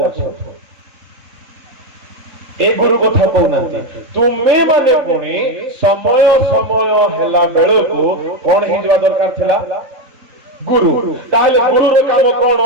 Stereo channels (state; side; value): late; left; 3.8 ms